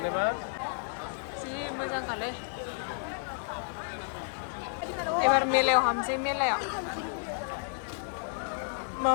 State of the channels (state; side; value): silent; right; digital silence